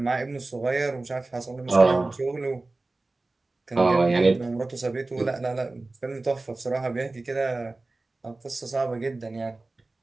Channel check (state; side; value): quieter; left; 3.2 dB